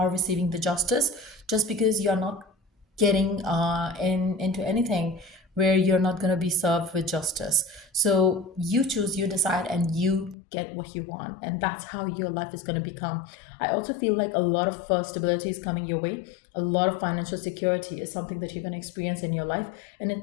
receiving the justice just because you're not getting into anything where you're not going to be served with justice. So you choose, you decide, and you get what you want, and that's how your life is going to become. I also feel like a lot of stability is coming your way. A lot of financial security is something that you're going to experience in your life, and it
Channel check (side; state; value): right; drops out; at 10.4 s